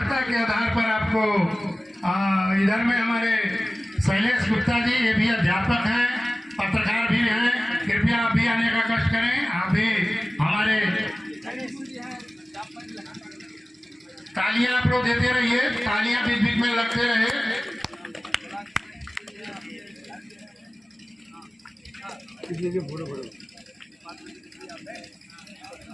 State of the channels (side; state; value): both; normal; correlation 0.97